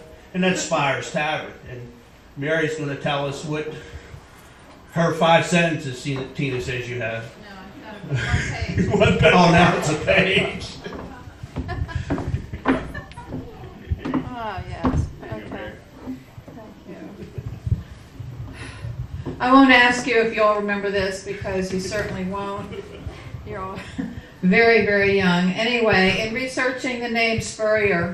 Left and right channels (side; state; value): both; identical; correlation 1.00